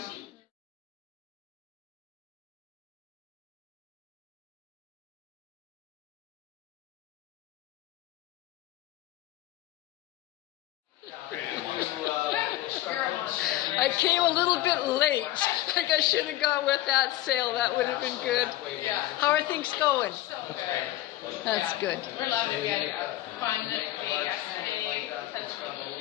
I came a little bit late. Like I should have gone with that sale. That would have been good. How are things going? That's good. We're loving it. We had a fun day yesterday.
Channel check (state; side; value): quieter; right; 15.3 dB